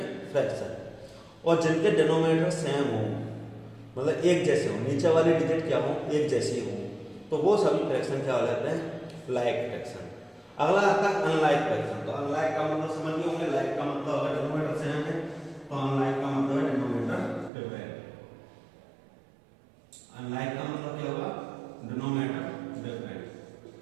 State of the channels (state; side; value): drops out; left; at 17.5 s